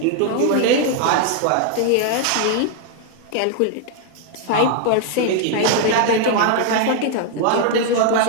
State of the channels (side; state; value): both; different; correlation 0.00